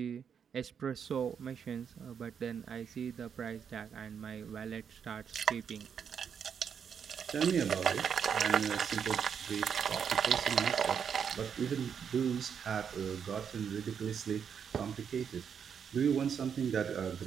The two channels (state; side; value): quieter; left; 7.4 dB